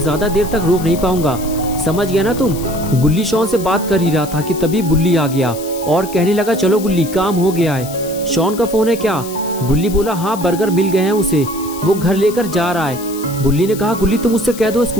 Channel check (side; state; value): left; noise; hiss, 14 dB below the sound